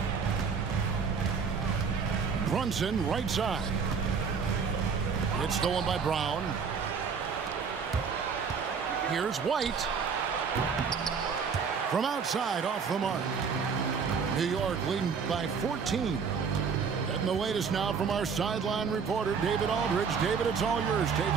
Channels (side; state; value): left; quieter; 5.9 dB